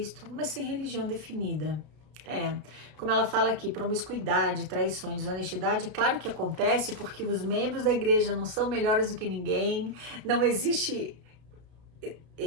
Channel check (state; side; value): late; left; 32 ms